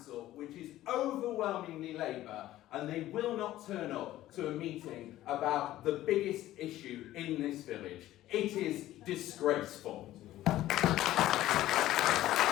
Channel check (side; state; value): right; quieter; 14.5 dB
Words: which is overwhelmingly Labour, and they will not turn up to a meeting about the biggest issue in this village. It is disgraceful.